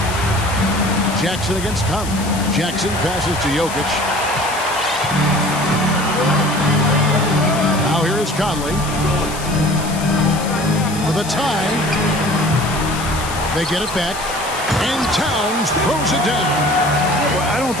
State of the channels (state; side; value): noise; left; hiss, 11 dB below the sound